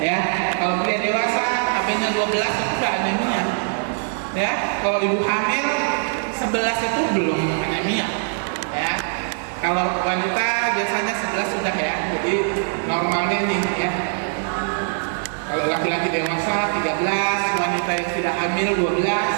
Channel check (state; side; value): silent; left; digital silence